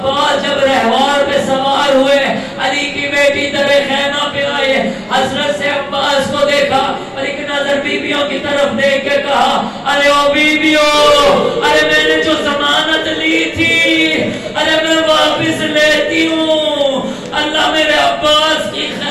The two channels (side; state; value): both; identical; correlation 1.00